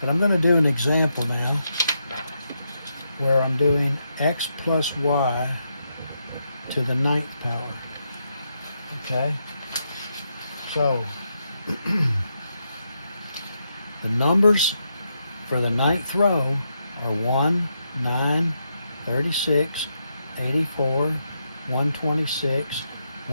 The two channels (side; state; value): both; inverted; correlation -0.82